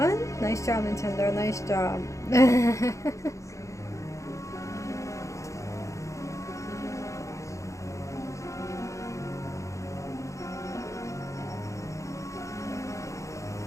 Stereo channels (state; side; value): late; right; 0.15 ms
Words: Nice job, Nintendo. Nice job.